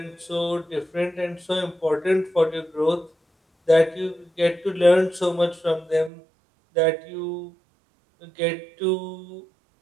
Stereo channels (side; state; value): left; drops out; at 6.1 s